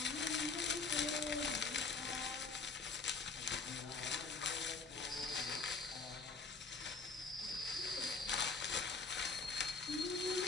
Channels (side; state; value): right; quieter; 4.2 dB